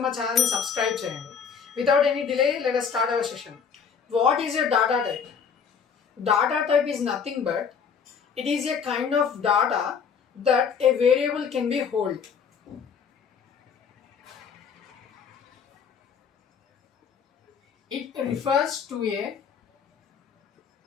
మా ఛానల్ని సబ్స్క్రైబ్ చేయండి. Without any delay let us start our session. What is a data type? Data type is nothing but it is a kind of data that a variable can be hold. It refers to a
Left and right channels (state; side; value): quieter; right; 6.5 dB